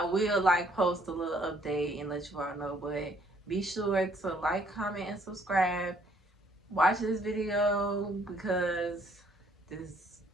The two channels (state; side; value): normal; both; correlation 0.64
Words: will like post a little update and let you all know. But be sure to like, comment, and subscribe. Watch this video because this